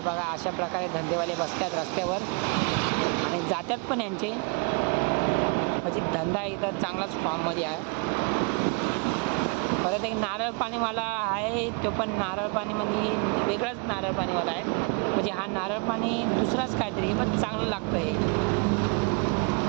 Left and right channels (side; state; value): left; quieter; 33.2 dB